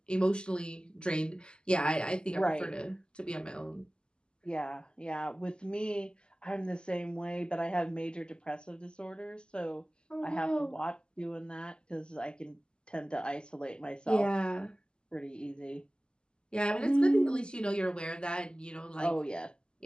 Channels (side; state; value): right; late; 0.048 ms